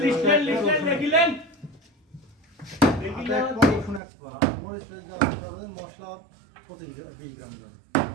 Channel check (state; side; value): drops out; left; at 4.0 s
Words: লিখলেন দেখিলেন রসুন 1 পোয়া মরিচ পেঁয়াজ দেওয়া হবে মশলা 20 গ্রাম দেবেন